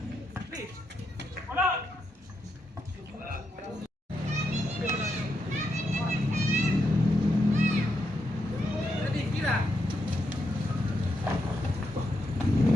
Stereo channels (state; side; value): normal; both; correlation 0.82